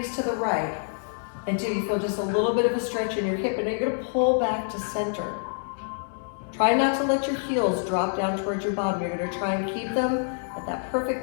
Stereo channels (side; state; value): right; silent; 60 dB below the other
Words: to the right until you feel just a little bit of a stretch in your hip, and then you're going to pull back to center. Try not to let your heels drop down towards your bottom. You're going to try and keep them at that